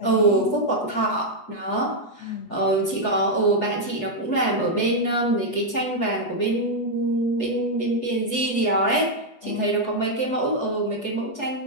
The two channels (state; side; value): late; right; 8.1 ms